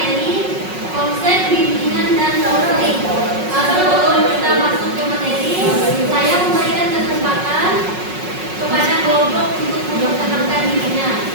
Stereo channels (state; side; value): late; left; 5.4 ms